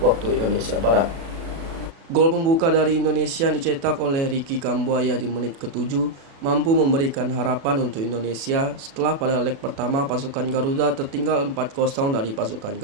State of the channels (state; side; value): late; left; 36 ms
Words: Indonesia Barat. Gol pembuka dari Indonesia dicetak oleh Ricky Kambuaya di menit ke-7 mampu memberikan harapan untuk Indonesia setelah pada leg pertama pasukan Garuda tertinggal 4-0 dari pasukan